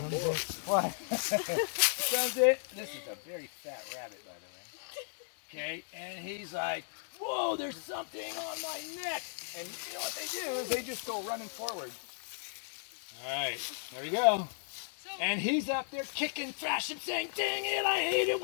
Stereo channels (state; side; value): silent; right; digital silence